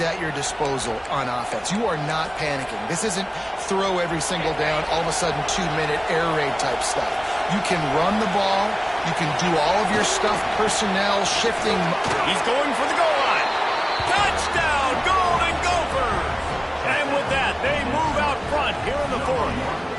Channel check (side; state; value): both; identical; correlation 1.00